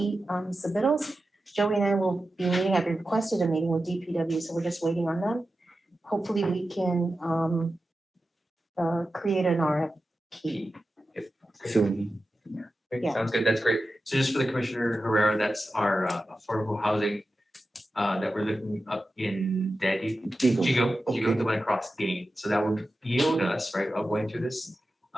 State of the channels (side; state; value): both; normal; correlation 0.92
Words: submittals. Joey and I will be meeting, I've requested a meeting with DPW, so we're just waiting on them. Hopefully we can create an RFP. Soon. Great, Yeah. sounds good, that's great. So just for the Commissioner Herrera, that's our affordable housing that we're looking up in Jigo, the one across Gain. So that would yield us, right, of going through this